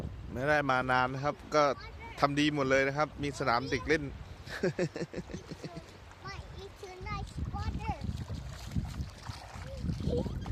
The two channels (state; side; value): identical; both; correlation 1.00